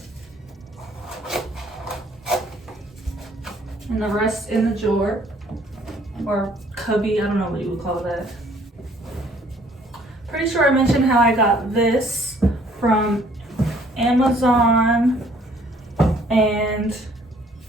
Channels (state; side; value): normal; both; correlation 0.60